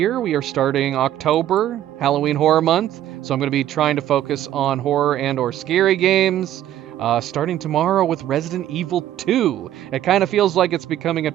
we are starting October, Halloween Horror Month. So I'm going to be trying to focus on horror and or scary games. Starting tomorrow with Resident Evil 2. It kind of feels like it's becoming a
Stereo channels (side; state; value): left; quieter; 12.3 dB